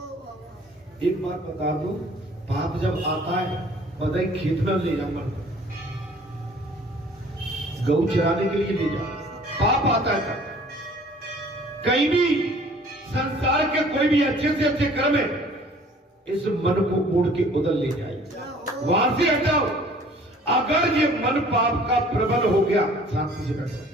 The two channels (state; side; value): normal; both; correlation 0.53